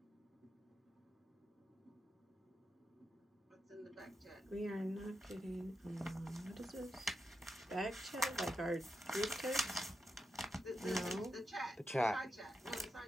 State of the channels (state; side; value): normal; both; correlation 0.86